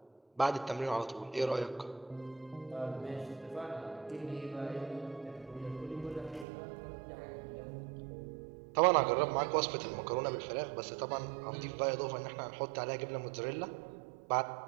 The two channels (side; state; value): left; drops out; at 6.5 s